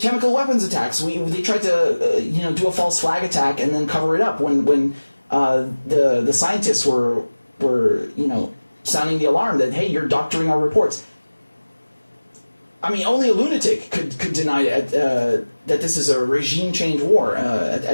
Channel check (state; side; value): inverted; both; correlation -1.00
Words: chemical weapons attacks, they tried to do a false flag attack and then cover it up when the scientists were sounding the alarm that, hey, you're doctoring our reports. I mean, only a lunatic could deny that this is a regime change war